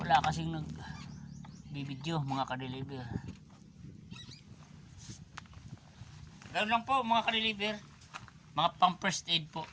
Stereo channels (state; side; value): identical; both; correlation 1.00